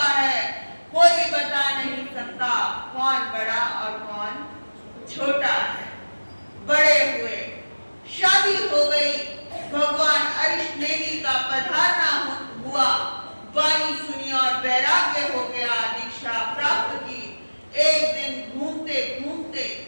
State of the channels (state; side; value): inverted; both; correlation -1.00